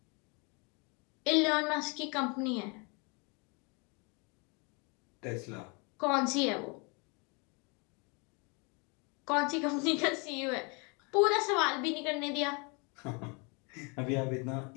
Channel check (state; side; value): quieter; right; 32.0 dB